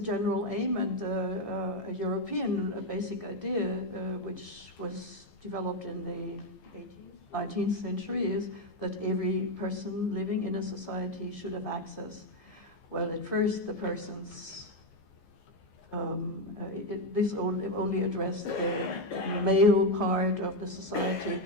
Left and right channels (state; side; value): late; right; 14 ms